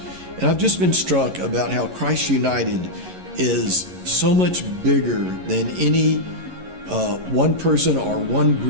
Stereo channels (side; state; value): left; late; 11 ms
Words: and I've just been struck about how Christ United is so much bigger than any one person or one